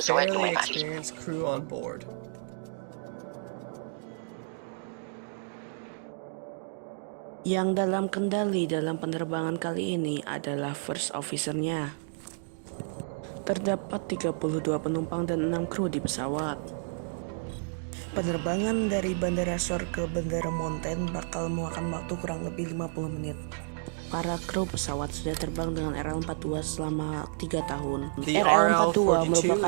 lumayan ahli. Crew on board. Yang dalam kendali dalam penerbangan kali ini adalah first officer-nya. Terdapat 32 penumpang dan 6 kru di pesawat. Penerbangan dari Bandara Shore ke Bandara Mountain bakal memakan waktu kurang lebih 50 menit. Para kru pesawat sudah terbang dengan RL-42 selama 3 tahun. RL-42 merupakan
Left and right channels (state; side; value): silent; left; digital silence